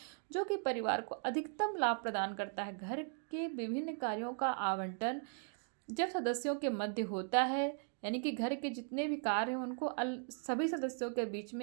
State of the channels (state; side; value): silent; left; 52 dB below the other